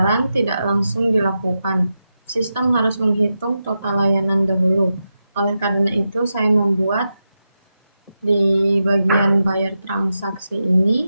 tidak langsung dilakukan. Sistem harus menghitung total layanan dahulu. Oleh karena itu, saya membuat di bagian bayar transaksi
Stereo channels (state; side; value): inverted; both; correlation -0.89